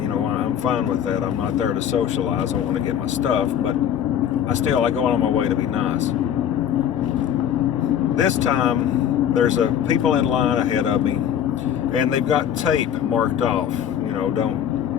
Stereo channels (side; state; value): right; quieter; 9.4 dB